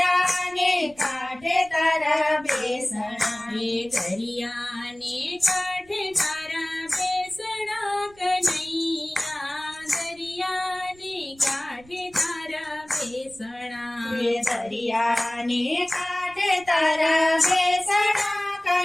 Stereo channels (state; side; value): noise; right; rumble, 26 dB below the sound